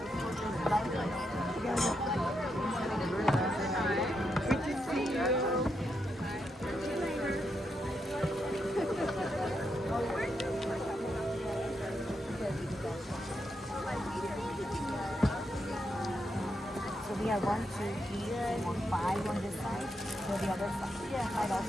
So we have 1, 2, 3, 4, 5 on this side. So the other side. Yeah, might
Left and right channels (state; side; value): normal; both; correlation 0.82